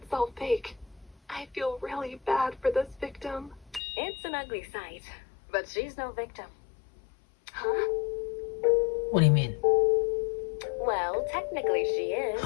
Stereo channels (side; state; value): right; drops out; at 3.8 s